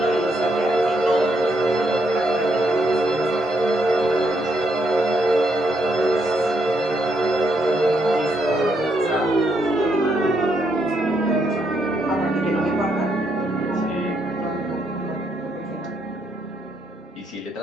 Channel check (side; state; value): both; normal; correlation 0.76